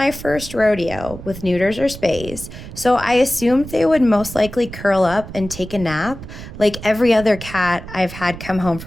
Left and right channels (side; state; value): right; noise; rumble, 12 dB below the sound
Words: first rodeo with neuters or spays, so I assumed they would most likely curl up and take a nap like every other cat I've had come home